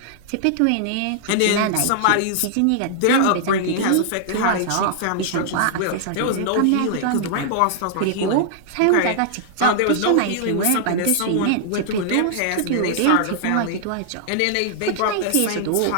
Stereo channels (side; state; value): both; different; correlation -0.01